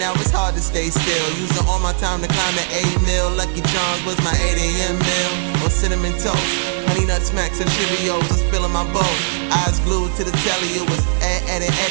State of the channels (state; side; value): silent; left; digital silence